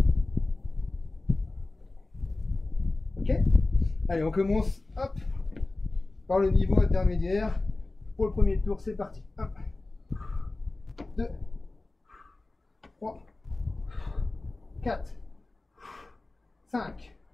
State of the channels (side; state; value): right; quieter; 3.1 dB